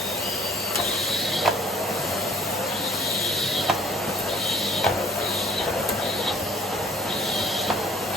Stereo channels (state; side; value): normal; both; correlation 0.53